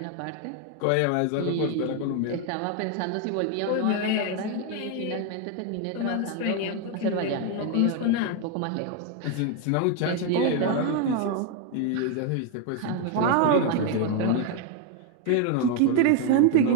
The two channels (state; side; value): different; both; correlation 0.01